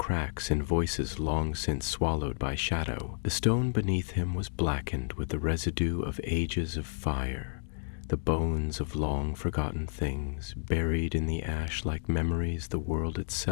in voices long since swallowed by shadow. The stone beneath him was blackened with the residue of ages of fire, the bones of long-forgotten things buried in the ash like memories the world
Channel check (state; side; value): silent; right; digital silence